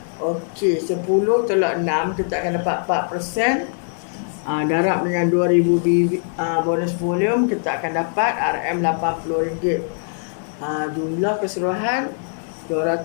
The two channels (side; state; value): right; silent; 65 dB below the other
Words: Okey, 10 tolak 6, kita akan dapat 4%. Darab dengan 2000 bonus volume, kita akan dapat RM80. Jumlah keseluruhan